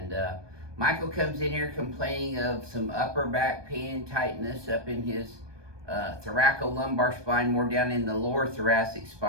Michael comes in here complaining of some upper back pain and tightness up in his thoracic lumbar spine, more down in the lower thoracic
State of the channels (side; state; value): left; late; 1.2 ms